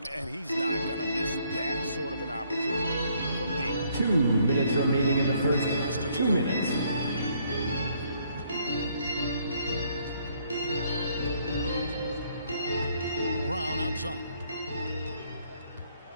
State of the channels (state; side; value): inverted; both; correlation -0.68